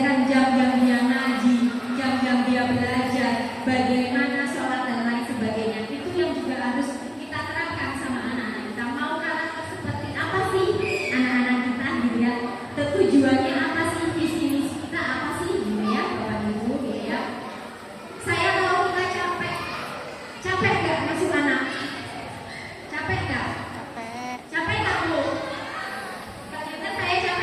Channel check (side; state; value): both; identical; correlation 1.00